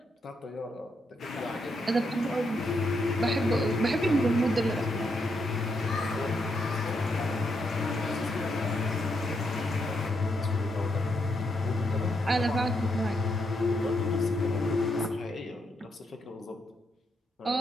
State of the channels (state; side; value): normal; both; correlation 0.79